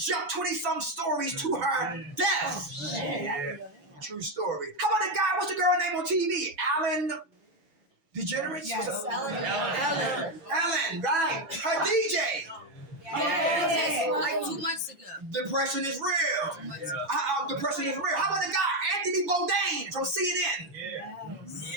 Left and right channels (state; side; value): late; left; 7.1 ms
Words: 20-some stories to her death. True story. How about the guy, what's the girl name on TV? Alan DeGeneres? Yes, Ellen, right. Her DJ. Like 2 months ago. Depression is real. Depression is real. How about the guy, Anthony Bourdain from CNN?